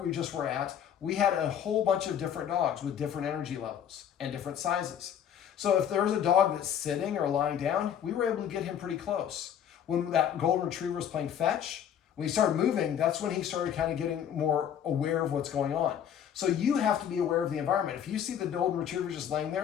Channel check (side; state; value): right; quieter; 9.1 dB